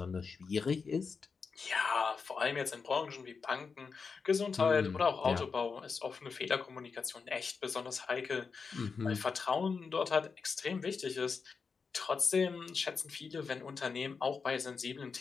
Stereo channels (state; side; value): quieter; right; 5.2 dB